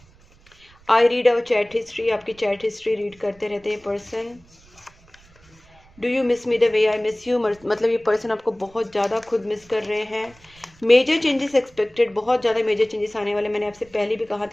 I read our chat history. आपकी चैट हिस्ट्री रीड करते रहते हैं person. Do you miss me the way I miss you. मतलब ये पर्सन आपको बहुत ज़्यादा खुद मिस कर रहे हैं। Major changes expected. बहुत ज़्यादा मेजर चेंजेस आने वाले। मैंने आपसे पहले भी कहा था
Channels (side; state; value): right; noise; rumble, 28 dB below the sound